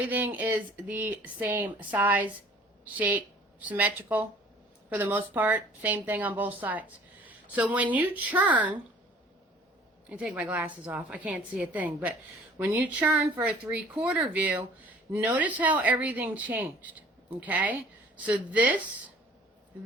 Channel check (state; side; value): normal; both; correlation 0.51